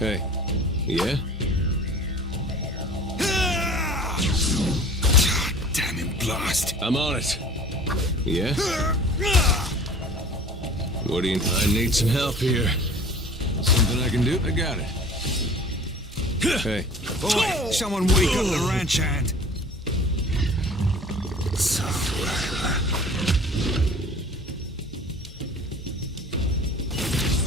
Yeah? Damn him, blast. I'm on it. Yeah? What do you... I need some help here. Something I can do? I got it. Hey. Boy, someone wake up the ranch hand. So,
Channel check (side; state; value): both; normal; correlation 0.44